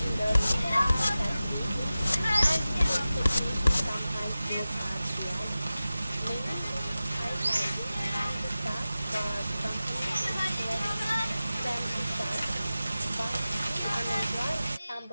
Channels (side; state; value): both; inverted; correlation -0.95